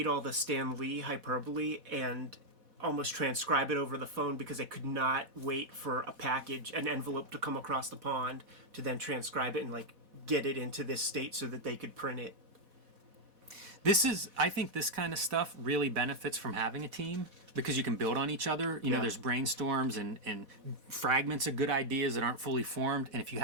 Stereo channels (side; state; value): left; late; 4.1 ms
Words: all the Stan Lee hyperbole and almost transcribe it over the phone because they could not wait for an envelope to come across the pond to then transcribe it and get it into this state so that they could print it. I think this kind of stuff really benefits from having a team because you can build on each other. There's brainstorms and fragments of good ideas that aren't fully formed. And if you